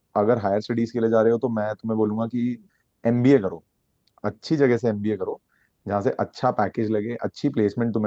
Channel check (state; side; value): identical; both; correlation 1.00